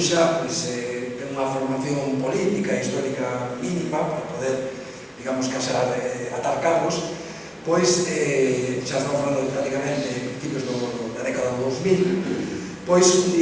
ten unha formación política e histórica mínima para poder, digamos, casar, atar cabos, pois xa estamos falando prácticamente de principios da década do 2000, pois un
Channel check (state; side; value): identical; both; correlation 1.00